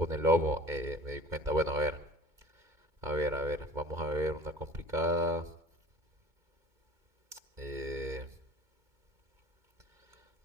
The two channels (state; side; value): late; left; 2.2 ms